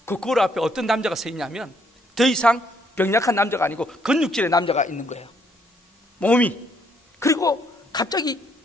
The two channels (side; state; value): both; normal; correlation 0.70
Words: 그 거울 앞에 어떤 남자가 서 있냐면 더 이상 병약한 남자가 아니고 근육질의 남자가 있는 거예요. 몸이. 그리고 갑자기